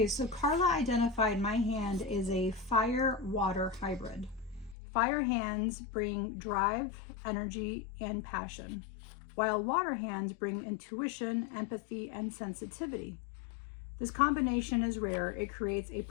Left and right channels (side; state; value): right; drops out; at 4.8 s